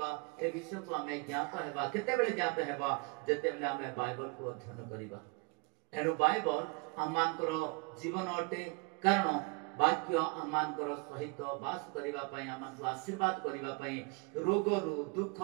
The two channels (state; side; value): quieter; left; 29.4 dB